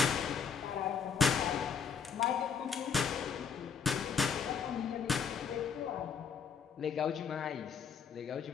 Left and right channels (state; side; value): quieter; right; 6.7 dB